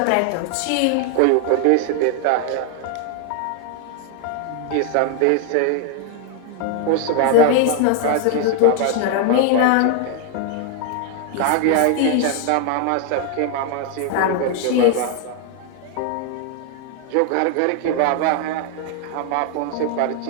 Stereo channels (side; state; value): both; different; correlation 0.00